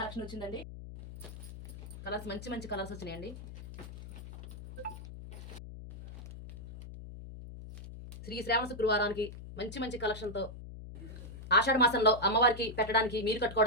వచ్చిందండి. కలర్స్ మంచి మంచి కలర్స్ వచ్చినాయండి. శ్రీ శ్రావణ శుక్రవారానికి మంచి మంచి కలెక్షన్తో ఆషాఢ మాసంలో అమ్మవారికి పెట్టడానికి, మీరు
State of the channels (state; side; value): noise; left; hum, 13 dB below the sound